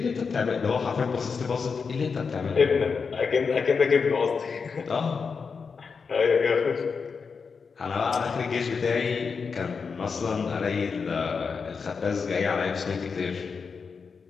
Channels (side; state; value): right; quieter; 5.4 dB